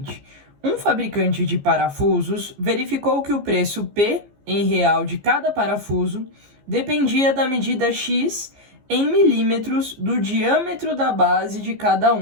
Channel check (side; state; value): left; late; 14 ms